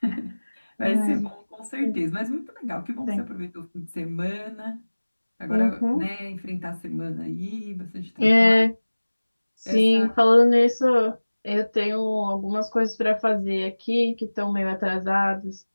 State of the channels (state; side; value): inverted; both; correlation -1.00